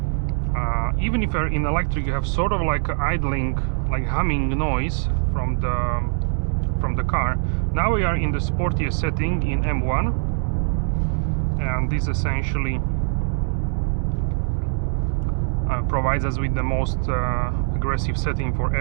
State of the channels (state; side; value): silent; left; 64 dB below the other